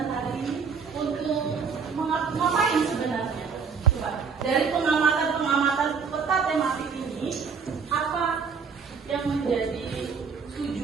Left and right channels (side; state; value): left; quieter; 5.8 dB